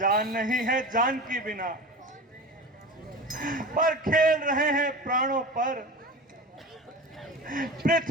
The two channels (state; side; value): normal; both; correlation 0.31